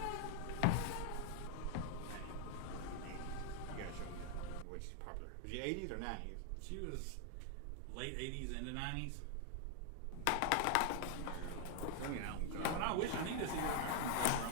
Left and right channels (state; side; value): different; both; correlation 0.00